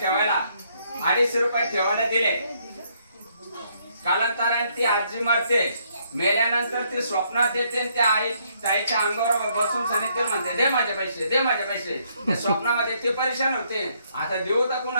250 रुपये ठेवायला दिले. कालांतराने ती आजी मरते, मेल्यानंतर ती स्वप्नात येते, त्या ताईच्या अंगावर बसून सांगितले म्हणते दे माझे पैसे, दे माझे पैसे. स्वप्नामध्ये ती परेशान होते. आता देऊ तर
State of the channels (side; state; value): both; inverted; correlation -0.71